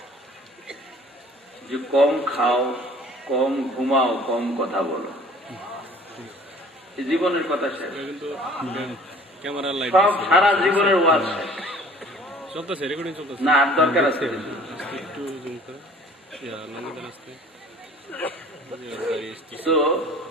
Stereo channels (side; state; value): both; normal; correlation 0.50